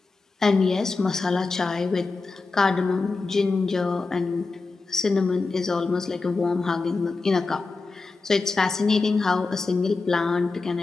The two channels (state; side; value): quieter; right; 3.9 dB